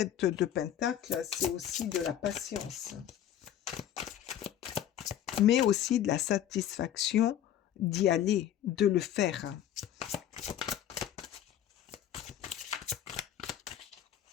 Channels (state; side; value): quieter; right; 10.8 dB